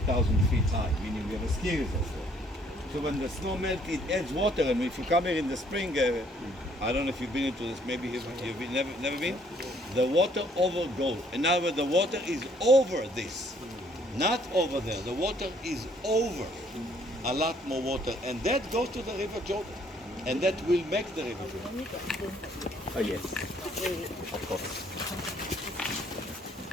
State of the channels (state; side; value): normal; both; correlation 0.63